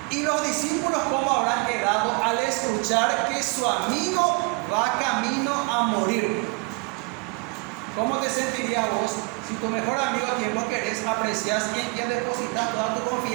Y los discípulos, ¿cómo habrán quedado al escuchar que su amigo va camino a morir? ¿Cómo te sentirías vos si tu mejor amigo, a quien vos querés, aprecias y en quien depositas toda tu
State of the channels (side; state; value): left; quieter; 29.7 dB